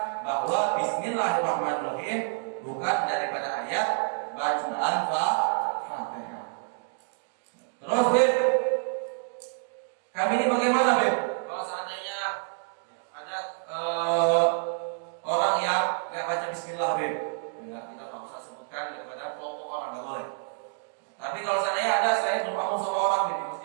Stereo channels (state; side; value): silent; left; digital silence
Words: bahwa Bismillahirrahmanirrahim bukan daripada ayat bacaan Fatihah. Terus Beb, kami ini bagaimana Beb? Kalau seandainya ada orang yang nggak baca Bismillah Beb, enggak, kita nggak usah sebutkan daripada kelompok orang, nggak boleh. Tapi kalau seandainya ada saya bermakmum sama orang di